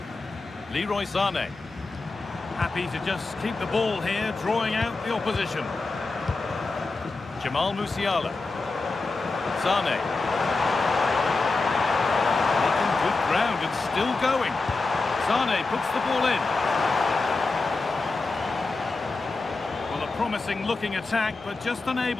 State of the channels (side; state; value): right; quieter; 3.7 dB